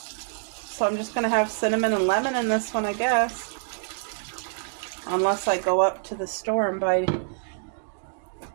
I'm just going to have cinnamon and lemon in this one, I guess. Unless I go up to the store and buy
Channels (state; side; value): silent; left; digital silence